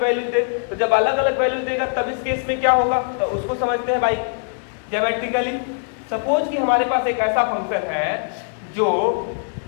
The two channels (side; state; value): right; silent; digital silence